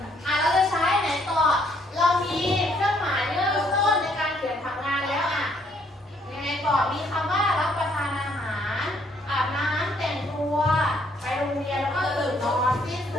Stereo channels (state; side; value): normal; both; correlation 0.68